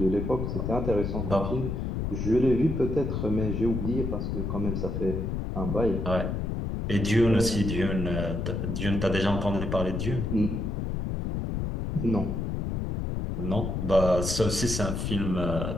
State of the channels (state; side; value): noise; left; rumble, 2 dB below the sound